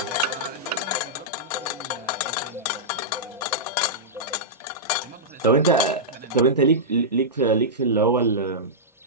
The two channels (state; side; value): normal; both; correlation -0.13